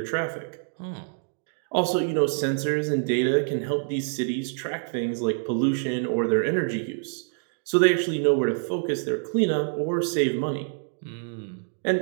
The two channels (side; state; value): left; silent; digital silence